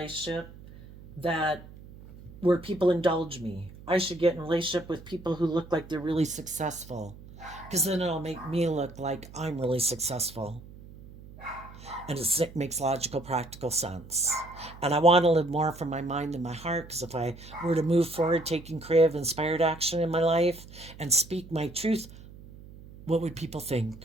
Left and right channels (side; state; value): right; noise; hum, 18 dB below the sound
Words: that where people indulge me. I should get in a relationship with people who look like they're really successful, because then it'll make me look like I'm really successful. And it makes logical, practical sense. And I want to live more from my mind than my heart, because if I were to move forward taking creative, inspired action in my life and speak my truth, what would people